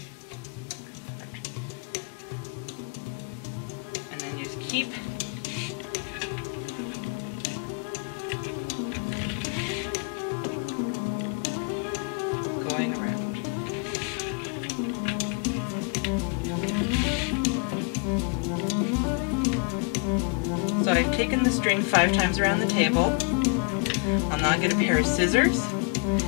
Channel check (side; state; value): right; quieter; 35.8 dB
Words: And then just keep going around. So I've taken the string 5 times around the table. I'll now get a pair of scissors,